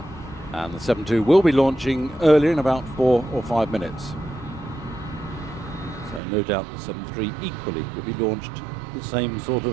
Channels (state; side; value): drops out; left; at 6.2 s